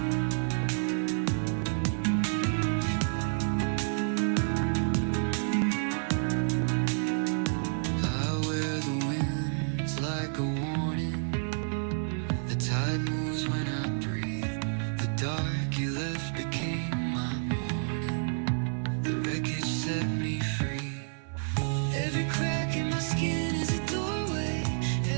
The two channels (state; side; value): silent; left; 58 dB below the other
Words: Like a warning, the tide moves when I breathe. The dark you left became my morning. The wreckage set me free. Every crack in my skin is a doorway.